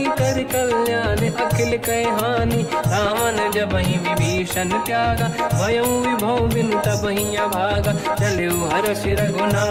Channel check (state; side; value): identical; both; correlation 1.00